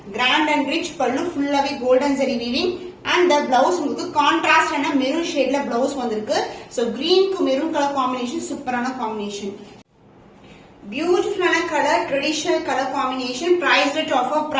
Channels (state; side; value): identical; both; correlation 1.00